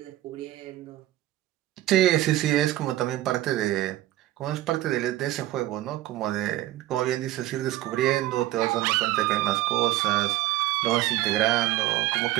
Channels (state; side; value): quieter; left; 15.5 dB